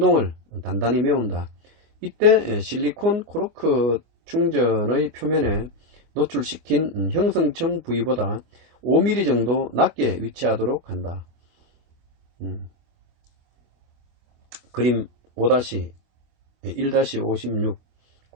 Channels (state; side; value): late; left; 25 ms